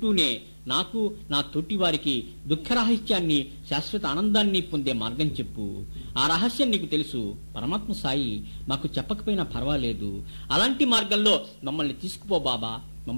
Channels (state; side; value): inverted; both; correlation -1.00